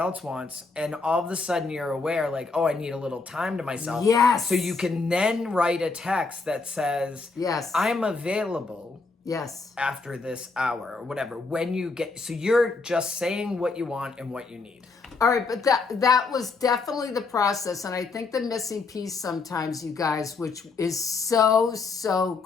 wants, and all of a sudden you're aware, oh, I need a little time to myself. Yes. So you can then write a text that says, yes, I'm available. Yes. After this hour or whatever. So you're just saying what you want and what you need. All right, but that was definitely the process. And I think the missing piece sometimes, you guys, which is so, so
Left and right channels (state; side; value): quieter; right; 4.1 dB